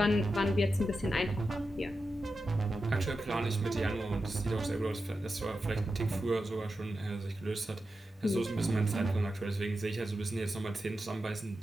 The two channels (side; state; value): both; normal; correlation 0.90